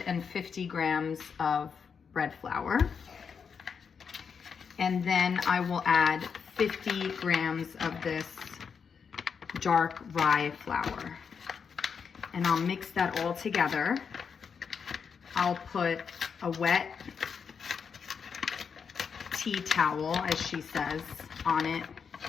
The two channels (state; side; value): quieter; right; 6.3 dB